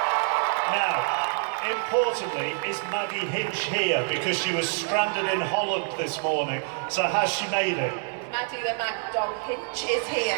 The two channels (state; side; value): silent; left; 61 dB below the other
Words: Now, importantly, is Maddie Hinch here? Because she was stranded in Holland this morning. So has she made it? Maddie the Mad Dog Hinch is here.